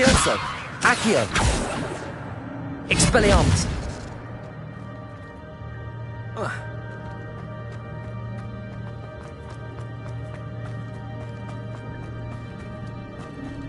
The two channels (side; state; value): both; identical; correlation 1.00